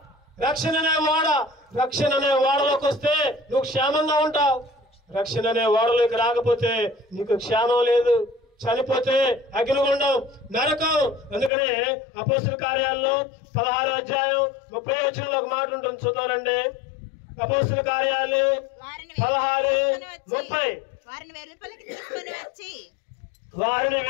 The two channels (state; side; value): drops out; right; at 11.5 s